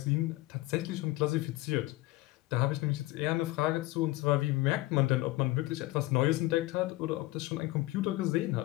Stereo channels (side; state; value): right; quieter; 19.1 dB